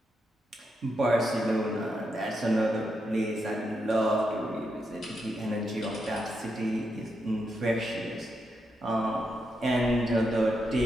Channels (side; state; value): both; normal; correlation 0.83